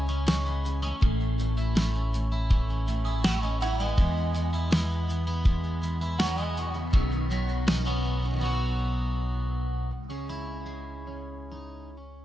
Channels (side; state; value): both; normal; correlation 0.90